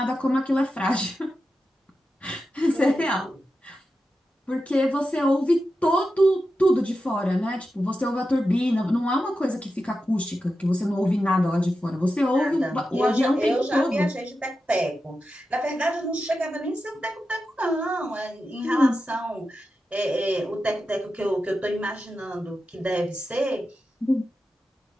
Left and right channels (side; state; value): both; normal; correlation 0.90